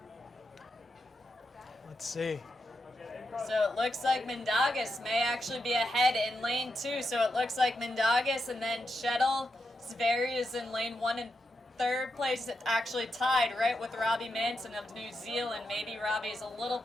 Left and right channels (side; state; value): both; normal; correlation 0.86